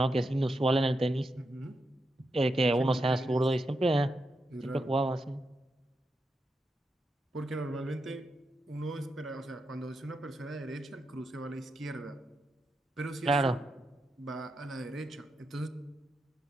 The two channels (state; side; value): normal; both; correlation 0.85